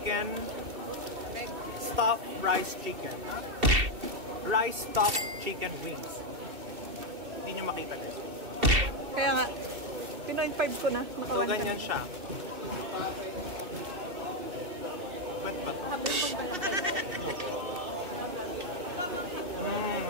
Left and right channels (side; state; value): left; late; 2.7 ms